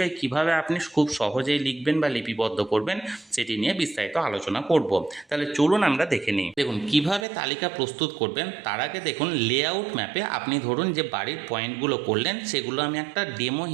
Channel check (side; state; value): left; drops out; at 7.2 s